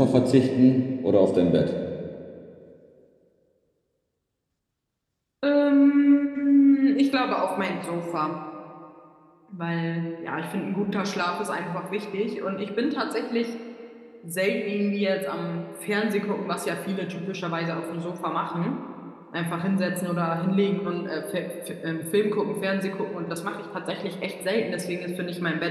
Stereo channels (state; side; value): identical; both; correlation 1.00